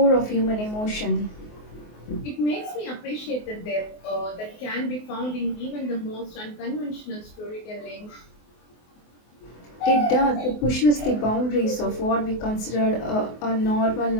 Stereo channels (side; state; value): right; late; 24 ms